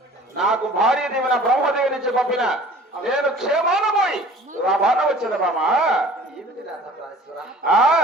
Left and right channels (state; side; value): normal; both; correlation 0.47